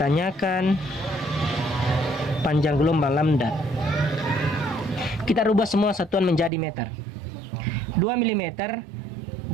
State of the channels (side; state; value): left; drops out; at 6.5 s